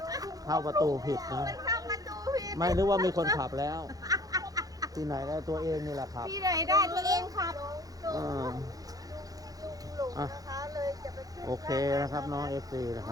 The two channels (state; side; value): late; left; 0.18 ms